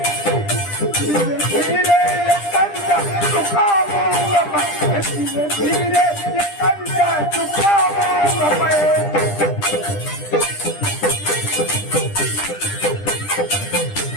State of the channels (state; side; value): late; right; 10 ms